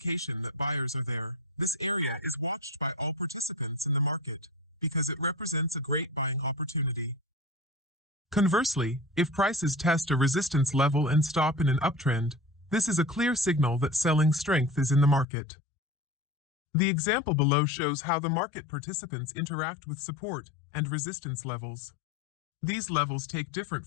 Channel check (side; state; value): right; drops out; at 15.2 s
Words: that buyers are there. This area is watched by all participants in the market because it represents a great buying opportunity. Conversely, if prices test a resistance level and stop in an uptrend, this is a clear signal that selling strength is in the market. The example below shows how the market participants interact with support and resistance levels. These levels take different